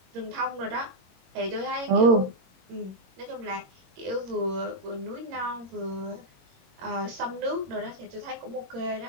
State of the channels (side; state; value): left; late; 22 ms